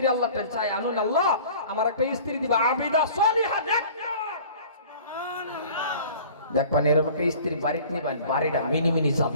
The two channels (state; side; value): inverted; both; correlation -0.46